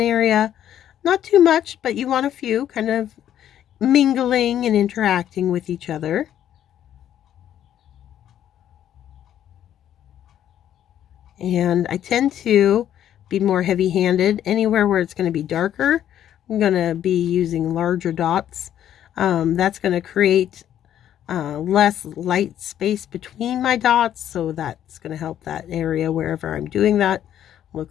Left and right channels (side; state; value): right; quieter; 10.8 dB